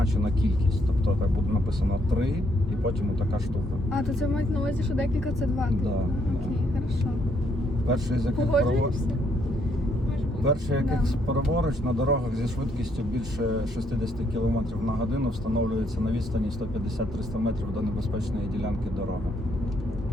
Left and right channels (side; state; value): both; normal; correlation 0.72